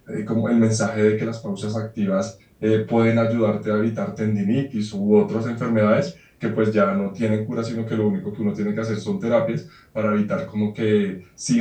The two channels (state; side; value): identical; both; correlation 1.00